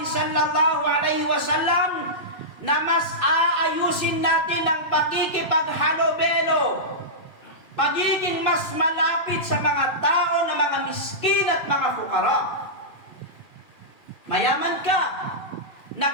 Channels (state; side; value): late; right; 2.8 ms